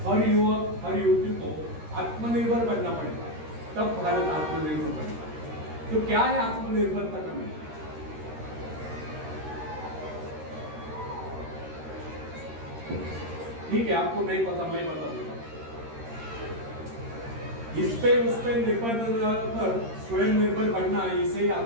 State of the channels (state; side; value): late; left; 13 ms